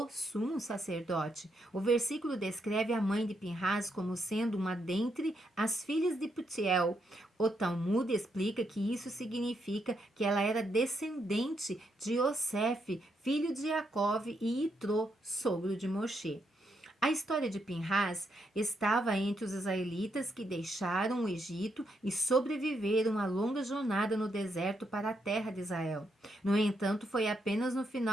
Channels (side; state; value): both; normal; correlation 0.79